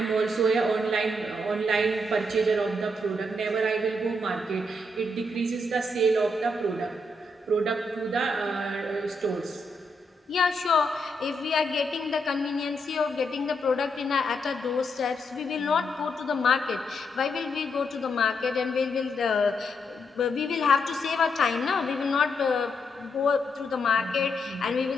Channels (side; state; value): both; normal; correlation 0.79